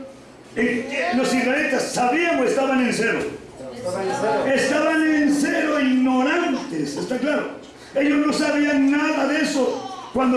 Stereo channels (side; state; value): both; identical; correlation 1.00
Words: los israelitas sabían o estaban en cero. Estaban en cero, ignorantes, ¿está claro? Ellos no sabían nada de eso.